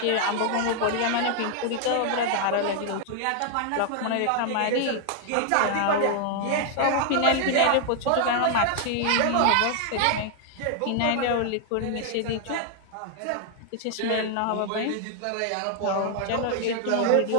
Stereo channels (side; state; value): both; different; correlation 0.00